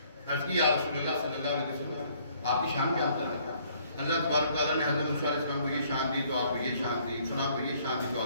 عرض کی یا رسول اللہ صلی اللہ علیہ وسلم آپ کی شان بیان کر رہے ہیں. اللہ تبارک تعالیٰ نے حضرت موسیٰ علیہ السلام کو یہ شان دی تو آپ کو یہ شان دی, فلاں کو یہ شان دی تو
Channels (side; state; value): both; inverted; correlation -0.62